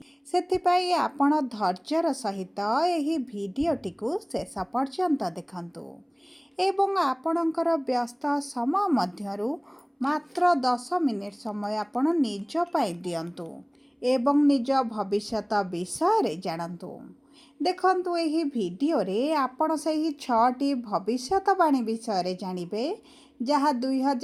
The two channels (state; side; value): identical; both; correlation 1.00